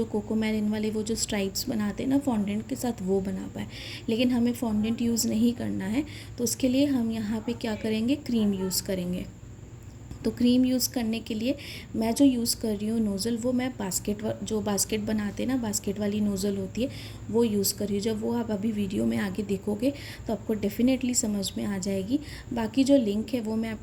कोकोमेलिन वाले वो जो स्ट्राइप्स बनाते हैं ना फॉन्डेंट के साथ, वो बना पाए। लेकिन हमें फॉन्डेंट यूज़ नहीं करना है, तो उसके लिए हम यहाँ पे क्या करेंगे, क्रीम यूज़ करेंगे। तो क्रीम यूज़ करने के लिए मैं जो यूज़ कर रही हूँ नोज़ल, वो मैं बास्केट बनाते हैं ना, बास्केट वाली नोज़ल होती है, वो यूज़ कर रही हूँ। जब वो आप अभी वीडियो में आगे देखोगे तो आपको डेफिनेटली समझ में आ जाएगी। बाकी जो लिंक है वो मैं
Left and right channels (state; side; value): identical; both; correlation 1.00